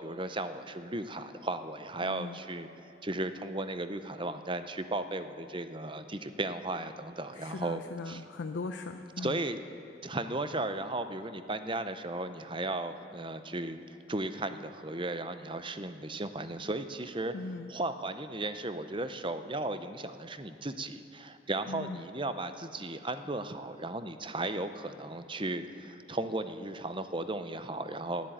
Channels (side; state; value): both; normal; correlation 0.34